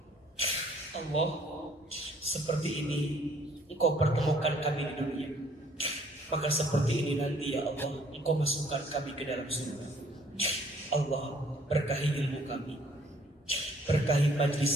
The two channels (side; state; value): both; normal; correlation 0.60